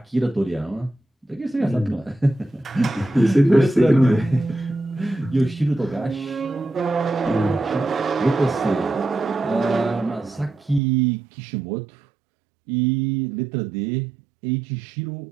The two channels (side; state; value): left; drops out; at 10.8 s